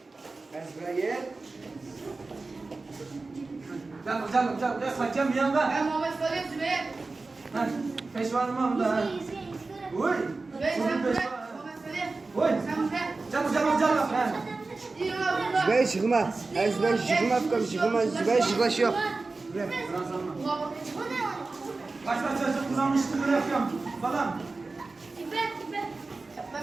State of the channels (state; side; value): quieter; left; 3.6 dB